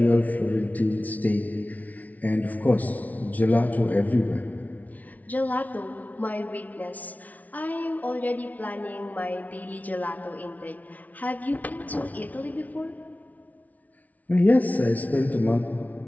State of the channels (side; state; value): right; late; 0.073 ms